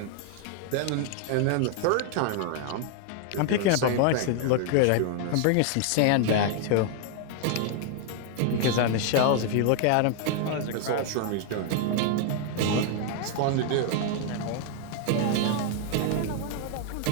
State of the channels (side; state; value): both; different; correlation 0.00